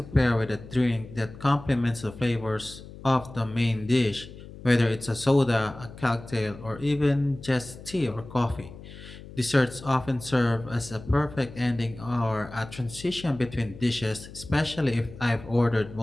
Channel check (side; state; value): left; noise; hum, 16 dB below the sound